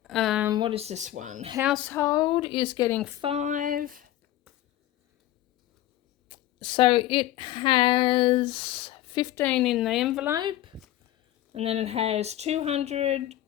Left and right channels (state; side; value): quieter; right; 13.9 dB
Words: What is this one? Household is getting 5, so it has 15 in the envelope, and then it has 200,